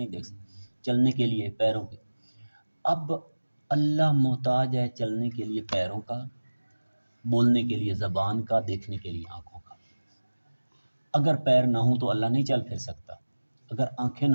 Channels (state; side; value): inverted; both; correlation -1.00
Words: دیکھ سکے۔ چلنے کے لیے پیروں کے، اب اللہ محتاج ہے چلنے کے لیے پیروں کا، بولنے کے لیے زبان کا، دیکھنے کے لیے آنکھوں کا۔ اگر پیر نہ ہوں تو اللہ نہیں چل پھر سکتا، اگر آنکھیں